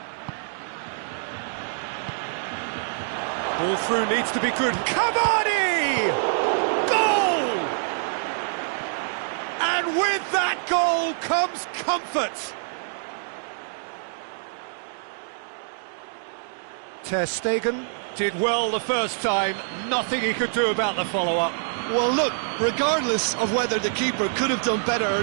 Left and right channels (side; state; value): left; silent; digital silence